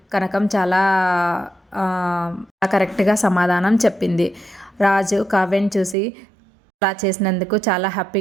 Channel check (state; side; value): drops out; left; at 6.0 s